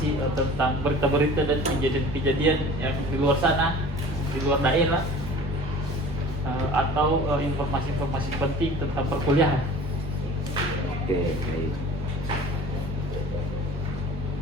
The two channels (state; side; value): normal; both; correlation 0.44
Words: tentang berita-berita dan kejadian-kejadian yang di luar sana, di luar daerah, atau informasi-informasi penting tentang perkuliahan. Oke, baik.